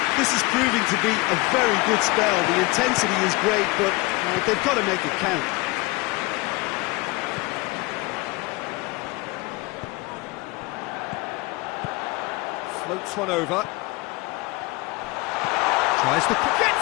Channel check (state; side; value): quieter; right; 23.4 dB